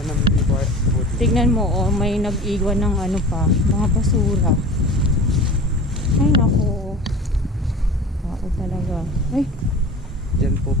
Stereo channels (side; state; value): both; normal; correlation 0.38